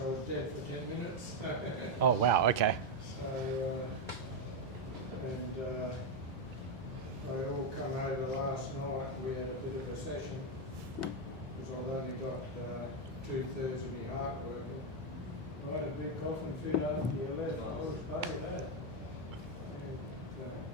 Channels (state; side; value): normal; both; correlation 0.04